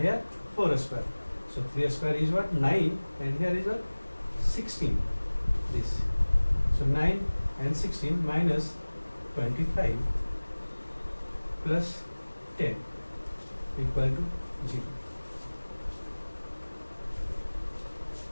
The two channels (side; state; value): both; inverted; correlation -1.00